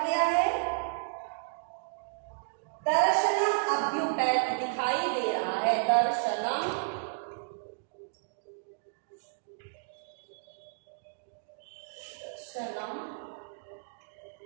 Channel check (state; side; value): silent; left; digital silence